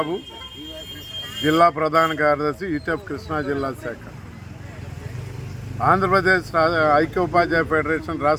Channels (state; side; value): identical; both; correlation 1.00